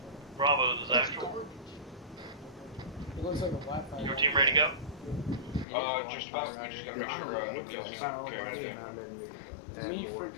Bravo is actual. It looks like a Wi-Fi. Your team ready to go? Just about. We just gotta make sure nobody else is carrying anything. Leave for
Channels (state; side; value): drops out; right; at 5.7 s